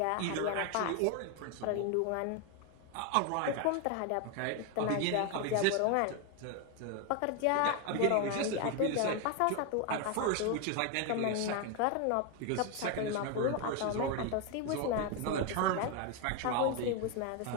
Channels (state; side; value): different; both; correlation 0.01